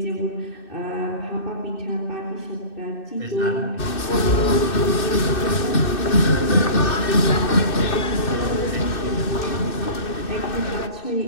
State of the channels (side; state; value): right; late; 2.6 ms